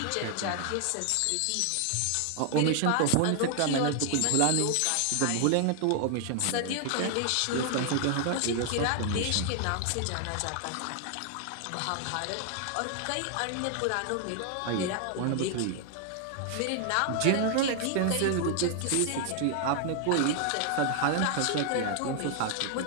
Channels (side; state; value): both; different; correlation 0.00